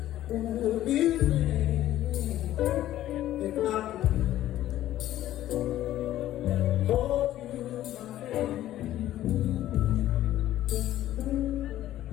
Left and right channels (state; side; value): quieter; right; 13.5 dB